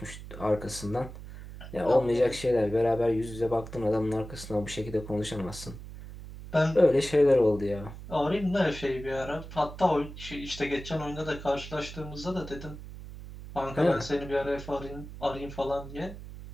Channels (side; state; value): right; noise; hum, 13 dB below the sound